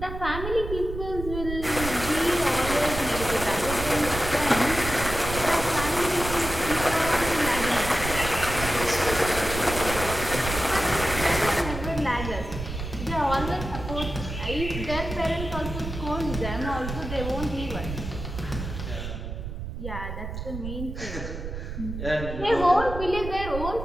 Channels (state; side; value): noise; right; rumble, 7 dB below the sound